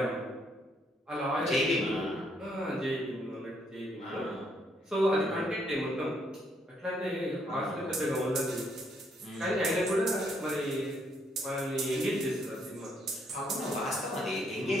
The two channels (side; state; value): both; normal; correlation 0.72